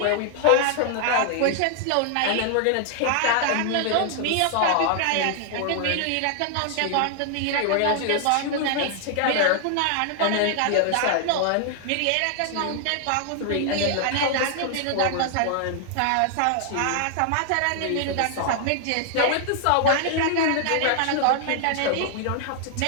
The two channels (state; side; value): different; both; correlation 0.00